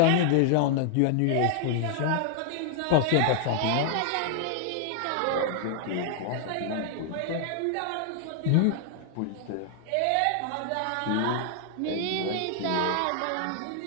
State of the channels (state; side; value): different; both; correlation 0.00